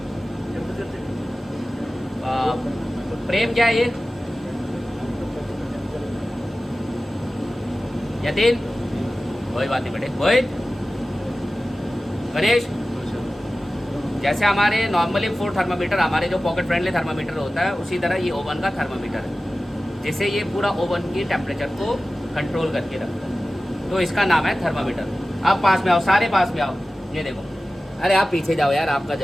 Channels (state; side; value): normal; both; correlation 0.96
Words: प्रेम क्या है ये? यतीन, कोई बात नहीं बेटे, मोहित, गणेश, जैसे हमारे नॉर्मली फूड थर्मामीटर, हमारे जो पॉकेट फ्रेंडली थर्मामीटर होता है, उसी तरह ये ओवन का थर्मामीटर है, जिससे ये पूरा ओवन की टेम्परेचर को कंट्रोल करके रखता है। तो इसका नाम है थर्मामीटर। आप पास में आओ, सारे पास में आओ, ये देखो। अरे आप पीछे जाओ यार, आपका